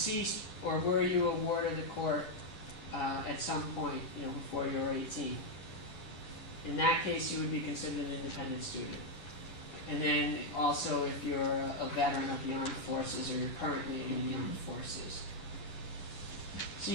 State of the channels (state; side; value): late; right; 10 ms